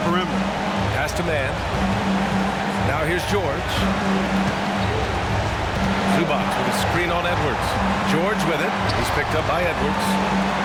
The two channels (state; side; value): identical; both; correlation 1.00